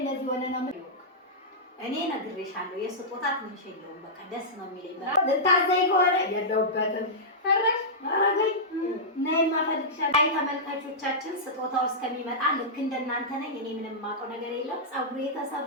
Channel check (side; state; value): both; normal; correlation -0.13